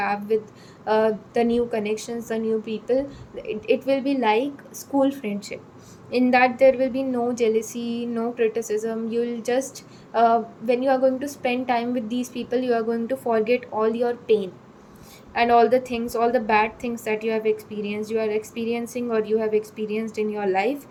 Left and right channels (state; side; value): identical; both; correlation 1.00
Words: with the new connections, the new people, it will be like school friendship, in that there will be no jealousy, no criticism. You'll just when you are going to spend time with these people, you are going to forget all your pain and all the things, all the bad things that you have experienced, you are experiencing, or you have experienced in your life.